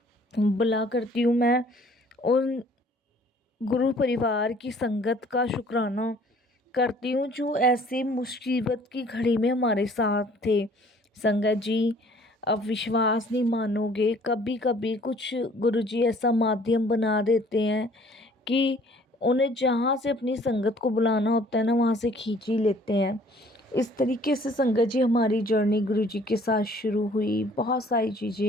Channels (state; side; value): normal; both; correlation 0.56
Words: बुला करती हूँ मैं उन गुरु परिवार की संगत का शुक्राना करती हूँ जो ऐसी मुसीबत की घड़ी में हमारे साथ थे संगत जी। अब विश्वास नहीं मानोगे, कभी कभी कुछ गुरुजी ऐसा माध्यम बना देते हैं कि उन्हें जहाँ से अपनी संगत को बुलाना होता है ना वहाँ से खींच ही लेते हैं। इस तरीके से संगत जी हमारी जर्नी गुरुजी के साथ शुरू हुई। बहुत सारी